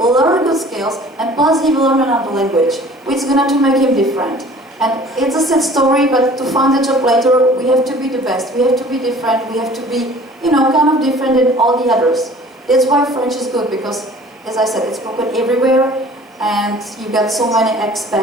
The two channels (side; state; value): both; normal; correlation 0.48